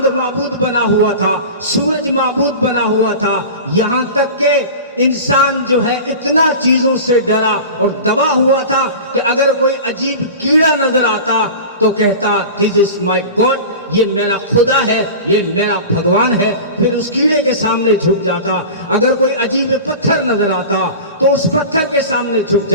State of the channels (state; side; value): inverted; both; correlation -0.33